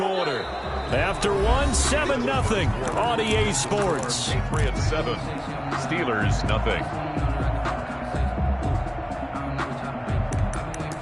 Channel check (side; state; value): both; identical; correlation 1.00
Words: After one, 7-0 on EA Sports. Patriots 7, Steelers nothing.